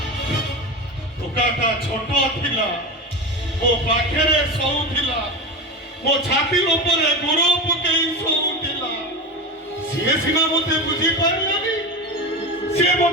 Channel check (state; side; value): normal; both; correlation 0.23